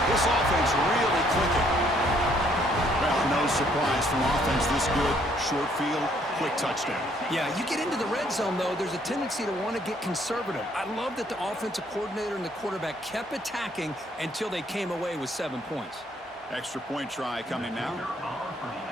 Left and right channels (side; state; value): both; normal; correlation 0.66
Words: This offense really clicking. Well, no surprise from offense this good. Short field, quick touchdown. Yeah, you get into the red zone, though, there's a tendency to want to get conservative. I love that the offensive coordinator and the quarterback kept attacking until they came away with 7 points. Extra point try coming now.